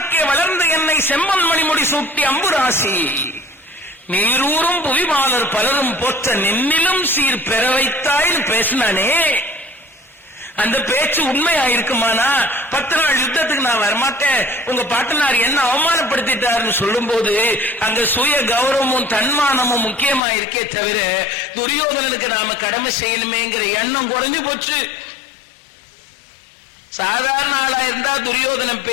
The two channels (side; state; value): right; drops out; at 20.2 s